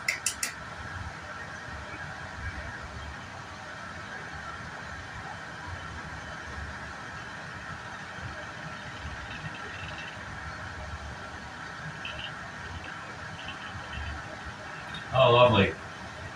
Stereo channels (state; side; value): identical; both; correlation 1.00